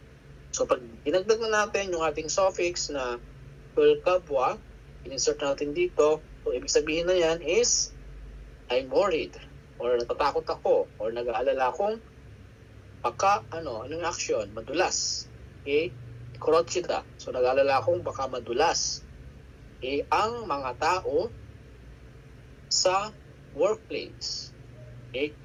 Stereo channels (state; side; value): identical; both; correlation 1.00